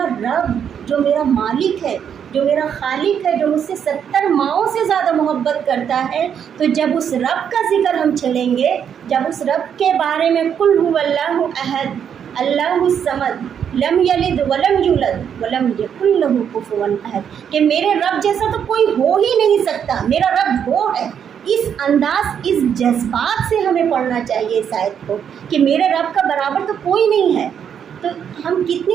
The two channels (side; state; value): left; quieter; 8.2 dB